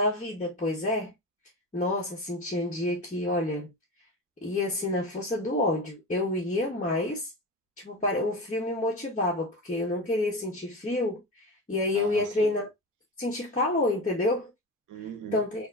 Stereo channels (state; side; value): normal; both; correlation 0.24